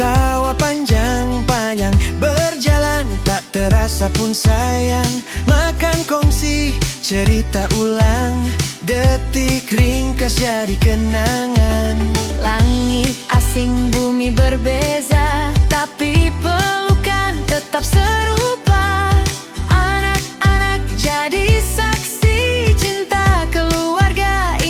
panjang-panjang, berjalan tak terasa pun sayang. Makan kongsi, cerita ulang, detik ringkas jadi kenangan. Langit asing, bumi berbeza, tapi pelukan tetap serupa. Anak-anak jadi saksi, cinta keluarga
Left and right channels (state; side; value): identical; both; correlation 1.00